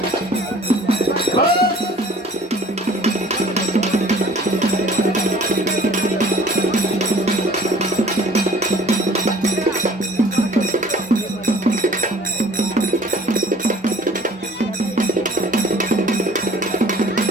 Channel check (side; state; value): both; normal; correlation 0.51